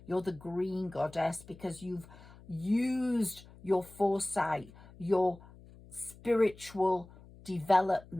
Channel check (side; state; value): left; noise; hum, 21 dB below the sound